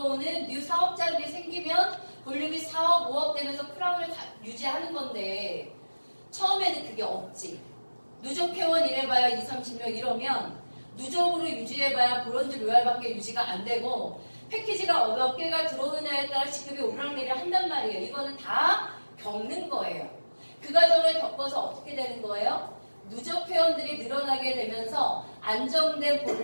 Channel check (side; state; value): both; inverted; correlation -1.00